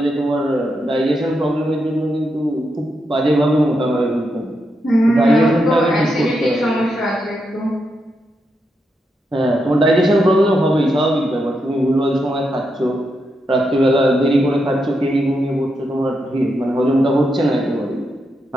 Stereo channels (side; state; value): both; normal; correlation 0.84